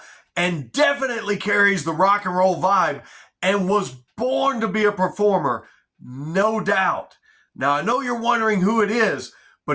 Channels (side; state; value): both; identical; correlation 1.00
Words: and definitely carries the rock and roll vibe and was born to be a performer, no doubt. Now, I know you're wondering who it is,